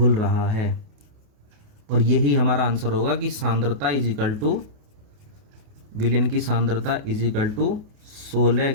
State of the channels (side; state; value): left; late; 28 ms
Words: रहा है। और यही हमारा आंसर होगा कि सांद्रता इज इक्वल टू, विलयन की सांद्रता इज इक्वल टू 16